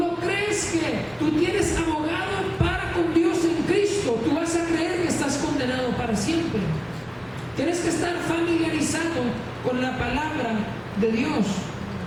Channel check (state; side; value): identical; both; correlation 1.00